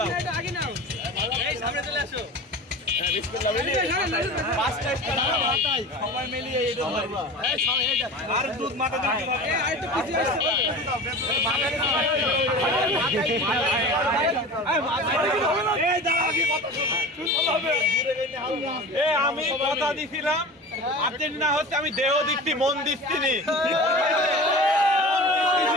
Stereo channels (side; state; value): both; normal; correlation 0.34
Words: সবাই মিলিয়ে আর দুধ মাথা আমি কথা দিছিলাম আর্জেন্টিনা হচ্ছে, আমি দেহ দিচ্ছি মন দিচ্ছি নি।